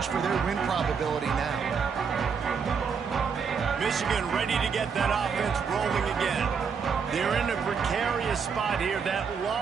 for their win probability now. Michigan ready to get that offense rolling again. They're in a precarious spot here. That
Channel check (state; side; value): quieter; left; 6.1 dB